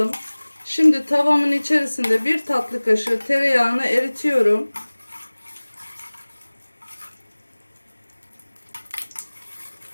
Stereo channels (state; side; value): inverted; both; correlation -1.00